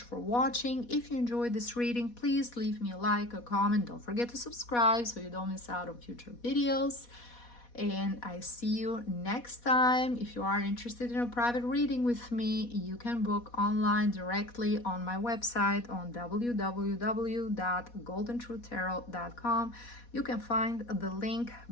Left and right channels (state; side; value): late; right; 4.1 ms